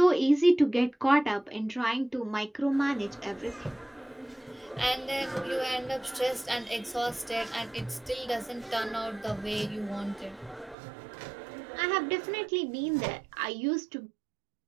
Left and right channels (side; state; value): left; drops out; at 10.8 s